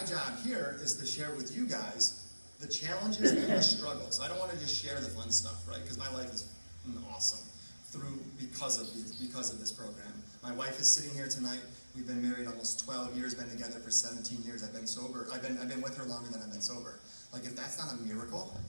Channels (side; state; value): both; inverted; correlation -1.00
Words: job here is to share with you guys the challenges and the struggles. I don't want to just share the fun stuff, right? Because my life is awesome because of this program. My wife is sitting here tonight. We've been married almost 12 years, been together for 17 years. I've been sober. I've been with her longer than I've been sober. Like, if that's not a miracle,